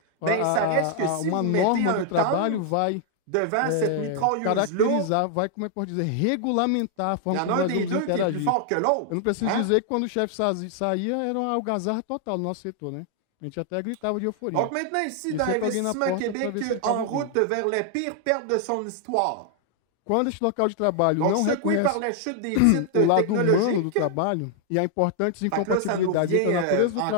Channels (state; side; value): different; both; correlation 0.00